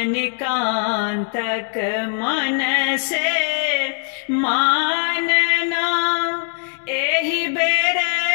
मन से मानना, एहि बेर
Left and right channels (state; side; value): silent; right; 61 dB below the other